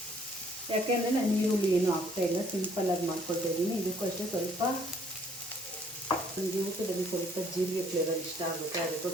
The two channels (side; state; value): both; normal; correlation 0.62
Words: ಯಾಕೆಂದರೆ ನಾನು ಈರುಳ್ಳಿ ಏನು ಹಾಕ್ತಾಯಿಲ್ಲ, ಸಿಂಪಲ್ಲಾಗಿ ಮಾಡ್ಕೊಳ್ತಾ ಇದ್ದೀನಿ. ಇದಕ್ಕೂ ಅಷ್ಟೇ ಸ್ವಲ್ಪ ನನಗೆ ಊಟದಲ್ಲಿ ಸ್ವಲ್ಪ ಜೀರಿಗೆ ಫ್ಲೇವರ್ ಇಷ್ಟ ಆಗುತ್ತೆ,